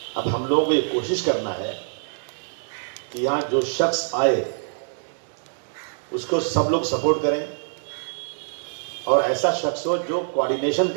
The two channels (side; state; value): left; silent; digital silence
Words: अब हम लोगों को ये कोशिश करना है कि यहाँ जो शख्स आए उसको सब लोग सपोर्ट करें और ऐसा शख्स हो जो कोऑर्डिनेशन